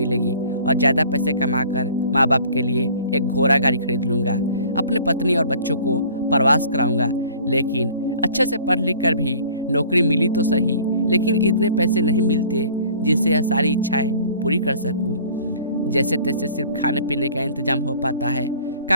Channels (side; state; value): both; inverted; correlation -0.50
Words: और ज़्यादा पैसे कमाकर माँ बाप के लिए एक घोड़ा गाड़ी खरीद लूँगा। अपने पत्नी और बच्चों को प्रवास कराऊंगा। लेकिन अच्छे से पढ़ लिख कर भी नौकरी मिली तो सही, लेकिन इतने पैसे नहीं मिलते जिससे यह सारी इच्छाएं पूरी कर सकूं। जैसे तैसे सिर्फ खाने पीने का इंतजाम हो पाता है।